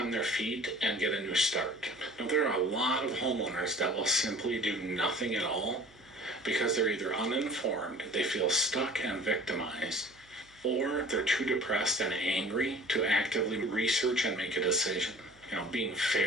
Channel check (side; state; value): right; noise; hum, 29 dB below the sound